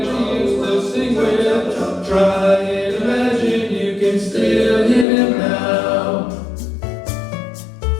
you used to sing with, try and imagine you can still hear them now.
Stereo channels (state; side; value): drops out; right; at 5.1 s